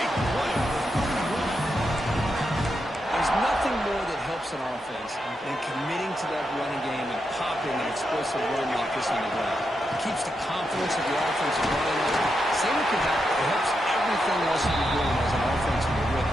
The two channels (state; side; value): normal; both; correlation 0.84